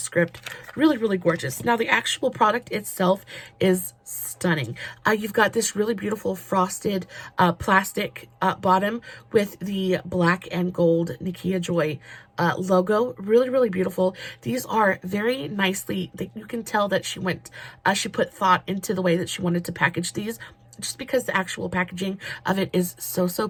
Really, really gorgeous. Now, the actual product itself is stunning. You've got this really beautiful frosted plastic bottom with the black and gold Nikkia Joy logo. Really, really beautiful. These are very nicely, you can tell that she put thought into the way that she wanted to package these, just because the actual packaging of it is so, so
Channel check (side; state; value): both; identical; correlation 1.00